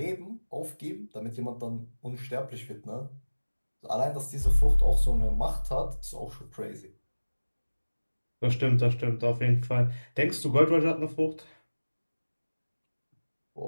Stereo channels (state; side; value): inverted; both; correlation -1.00